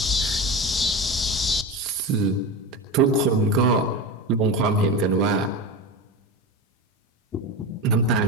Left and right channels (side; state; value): both; normal; correlation 0.23